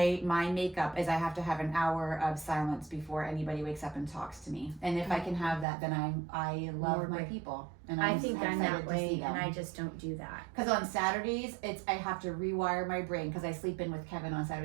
makeup is I have to have an hour of silence before anybody wakes up and talks to me. And if I can have that, then I love More my break. people. And I think I'm excited that to see way, them. and I just don't do that. Because on Saturdays, I have to rewire my brain because I sleep in with Kevin on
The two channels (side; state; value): left; drops out; at 5.7 s